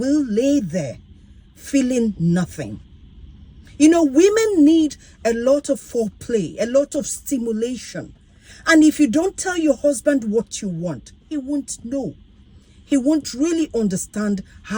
lay there feeling nothing. Women need a lot of foreplay, a lot of stimulation. And if you don't tell your husband what you want, he won't know. He won't really understand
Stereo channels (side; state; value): both; identical; correlation 1.00